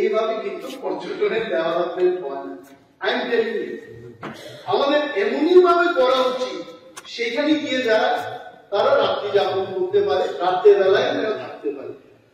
এইভাবে কিন্তু পর্যটনের ডেভেলপমেন্ট হয় না। আই এম টেলিং ইউ, আমাদের এমনই ভাবে করা উচিত সেখানে গিয়ে যারা তারা রাত্রি যাপন করতে পারে, রাত্রে বেলায় তারা থাকতে পারে।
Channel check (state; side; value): identical; both; correlation 1.00